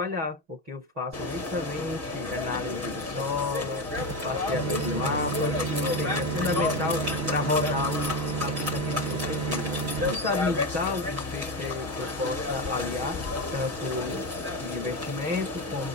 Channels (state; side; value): late; left; 6.2 ms